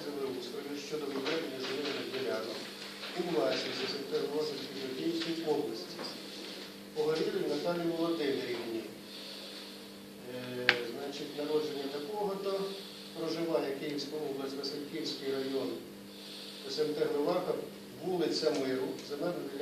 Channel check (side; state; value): both; identical; correlation 1.00